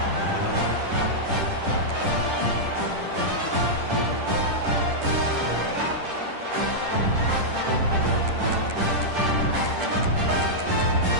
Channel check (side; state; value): left; late; 10 ms